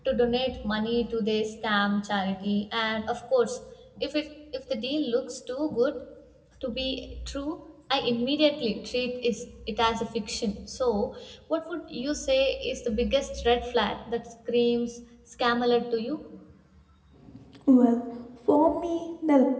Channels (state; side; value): identical; both; correlation 1.00